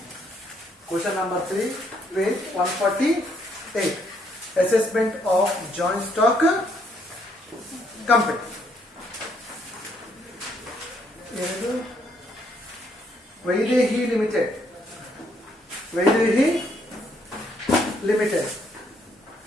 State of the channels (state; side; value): normal; both; correlation 0.71